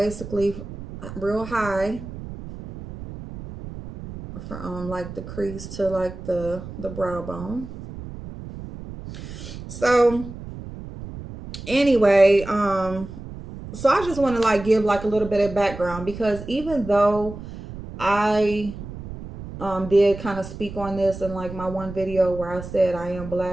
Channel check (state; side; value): noise; right; rumble, 12 dB below the sound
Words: real high from like the crease to like the brow bone. So anyway, so I just want to like give like a little bit of background, because even though I did kind of speak on this in like my one video where I said I am